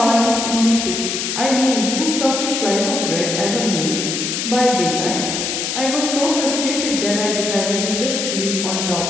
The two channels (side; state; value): left; noise; hiss, 2 dB below the sound